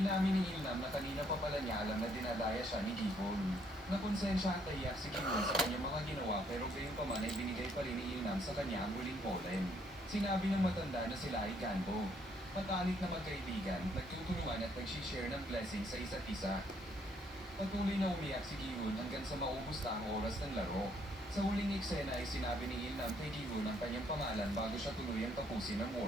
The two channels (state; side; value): normal; both; correlation 0.68